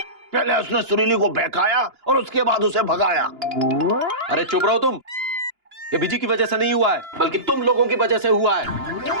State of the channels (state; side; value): late; left; 2.9 ms